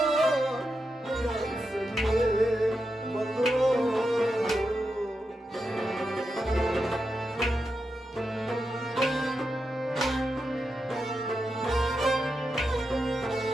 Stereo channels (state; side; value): normal; both; correlation 0.87